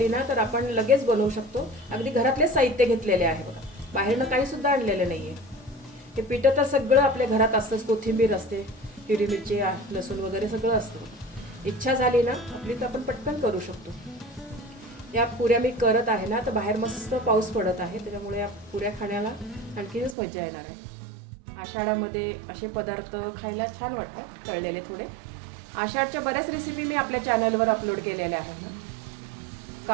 ना तर आपण लगेच बनवू शकतो. अगदी घरातले साहित्य घेतलेले आहे बघा. बाहेरनं काही सुद्धा आणलेलं नाहीये. हे पीठ तर सगळं आपल्या घरात असतंच. कोथिंबीर असते, हिरवी मिरची, लसूण वगैरे सगळं असतं. इच्छा झाली ना आपली तर आपण पटकन करू शकतो. या पुऱ्या मी करत आहे ना तर बाहेर मस्त पाऊस पडत आहे त्याच्यामुळे या पुऱ्या खाण्याला आणखीनच मजा येणार आहे. आषाढामध्ये असे पदार्थ खायला छान वाटतात तळलेले थोडे. आषाढच्या बऱ्याच रेसिपी मी आपल्या चॅनलवर अपलोड केलेल्या आहेत.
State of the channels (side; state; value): left; drops out; at 20.2 s